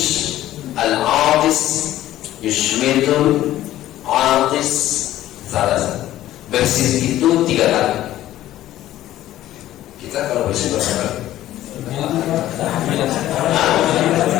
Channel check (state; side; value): quieter; right; 13.9 dB